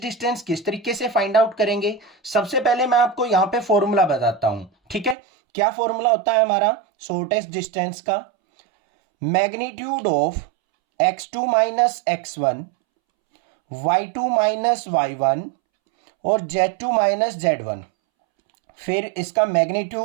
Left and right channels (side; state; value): left; drops out; at 5.2 s